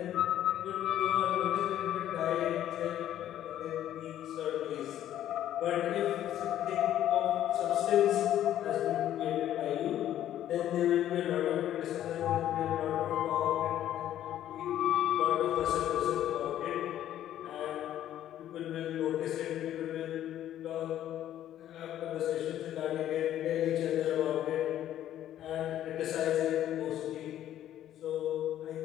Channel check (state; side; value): quieter; right; 11.8 dB